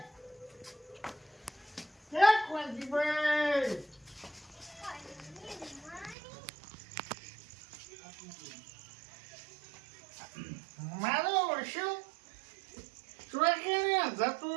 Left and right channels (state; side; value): drops out; left; at 6.2 s